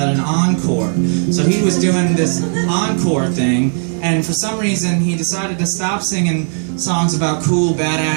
an encore. So he was doing this encore thing, and for some reason he decided to stop singing songs about cool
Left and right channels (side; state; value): left; silent; digital silence